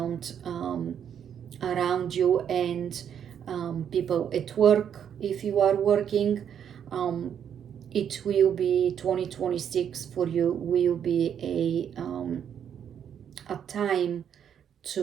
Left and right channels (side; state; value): left; quieter; 8.7 dB